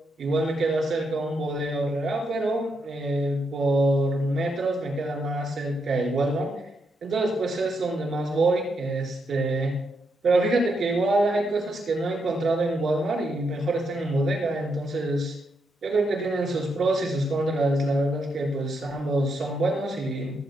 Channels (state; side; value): normal; both; correlation 0.80